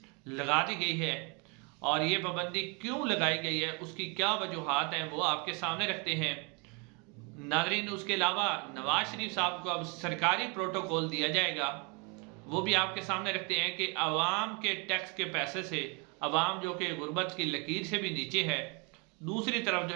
लगा दी गई है और ये पाबंदी क्यों लगाई गई है, उसकी क्या वजूहात हैं, वो आपके सामने रखते हैं नाज़रीन। उसके अलावा नवाज शरीफ साहब को अब सरकारी प्रोटोकॉल दिया जाएगा, वो भी आपके सामने रखते हैं कि आवाम के टैक्स के पैसे से आवाम जो कि गुर्बत की लकीर से भी नीचे है, दूसरी तरफ जो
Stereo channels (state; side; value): quieter; left; 32.4 dB